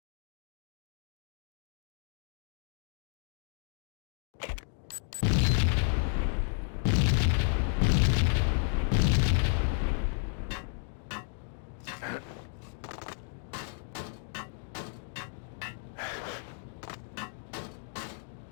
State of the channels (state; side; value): silent; right; digital silence